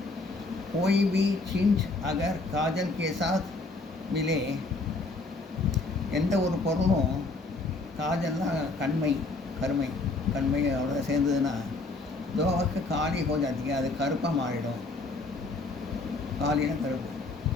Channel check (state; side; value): quieter; right; 3.3 dB